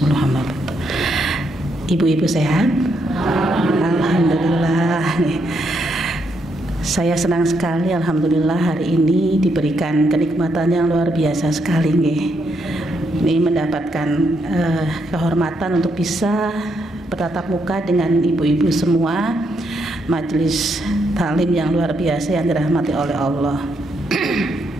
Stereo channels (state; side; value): normal; both; correlation 0.77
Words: amma ba'du. Ibu-ibu sehat? Alhamdulillah. Saya senang sekali, alhamdulillah, hari ini diberikan kenikmatan yang luar biasa sekali nggih. Ini mendapatkan kehormatan untuk bisa bertatap muka dengan ibu-ibu semua, majelis taklim yang luar biasa yang dirahmati oleh Allah.